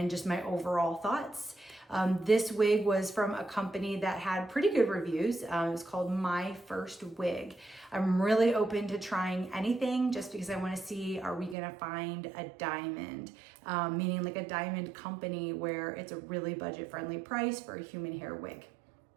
just my overall thoughts. This wig was from a company that had pretty good reviews. It was called My First Wig. I'm really open to trying anything just because I want to see, are we going to find a diamond, meaning like a diamond company where it's a really budget-friendly price for a human hair wig.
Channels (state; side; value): drops out; left; at 11.6 s